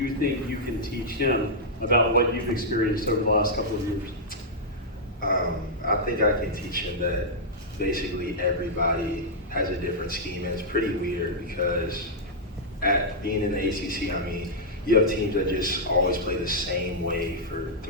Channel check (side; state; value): both; normal; correlation -0.08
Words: think you can teach him about what you've experienced over the last couple of years? I think I can teach him that basically everybody has a different scheme, and it's pretty weird because at being in the ACC, I mean, you have teams that just always play the same way for